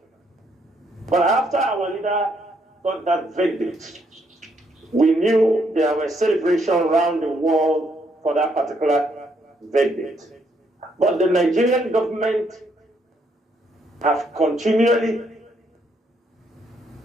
But after our leader got that verdict, we knew there were celebrations around the world for that particular verdict. But the Nigerian government have continually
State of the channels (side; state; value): both; normal; correlation 0.73